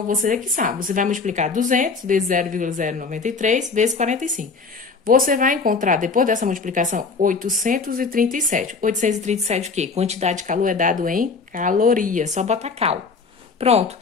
você é que sabe. Você vai multiplicar 200 vezes 0,093 vezes 45. Você vai encontrar, depois dessa multiplicação, 837. 837 o quê? Quantidade de calor é dado em calorias, só bota cal. Pronto,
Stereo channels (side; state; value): right; quieter; 4.6 dB